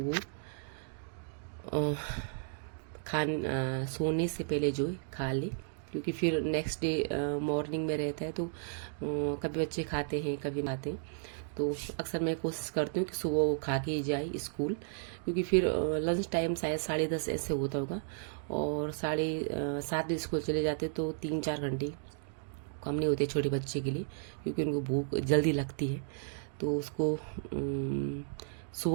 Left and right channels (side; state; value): left; silent; digital silence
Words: सोने से पहले जो है खा ले, क्योंकि फिर नेक्स्ट डे मॉर्निंग में रहता है तो कभी बच्चे खाते हैं कभी खाते हैं। तो अक्सर मैं कोशिश करती हूँ कि सुबह वो खा के ही जाए स्कूल, क्योंकि फिर लंच टाइम शायद 10:30 ऐसे होता होगा, और 7:30 बजे स्कूल चले जाते तो 3-4 घंटे कम नहीं होते छोटे बच्चे के लिए, क्योंकि उनको भूख जल्दी लगती है। तो उसको